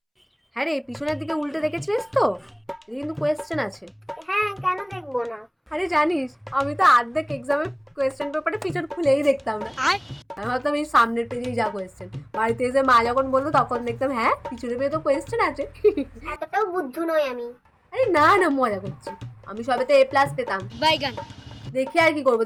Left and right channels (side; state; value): both; identical; correlation 1.00